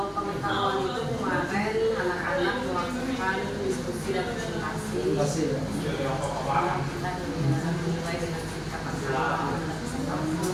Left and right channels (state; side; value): identical; both; correlation 1.00